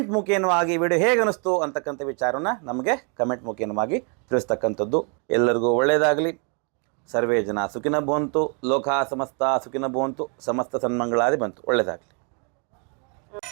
ಮುಖೇನವಾಗಿ ವಿಡಿಯೋ ಹೇಗೆ ಅನ್ನಿಸ್ತು ಅಂತಕ್ಕಂಥ ವಿಚಾರವನ್ನು ನಮಗೆ ಕಮೆಂಟ್ ಮುಖೇನವಾಗಿ ತಿಳಿಸ್ತಕ್ಕಂಥದ್ದು. ಎಲ್ಲರಿಗೂ ಒಳ್ಳೆಯದಾಗಲಿ. ಸರ್ವೇ ಜನ ಸುಖಿನ ಭವಂತು, ಲೋಕ ಸಮಸ್ತ ಸುಖಿನ ಭವಂತು, ಸಮಸ್ತ ಸನ್ಮಂಗಳಾದಿ ಬಂತು. ಒಳ್ಳೆಯದಾಗಲಿ.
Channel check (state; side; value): quieter; left; 37.7 dB